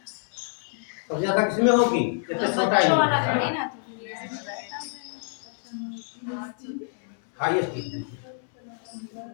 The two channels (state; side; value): silent; right; 60 dB below the other